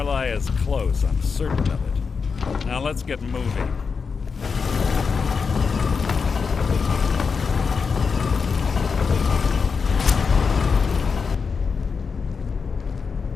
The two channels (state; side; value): quieter; right; 5.4 dB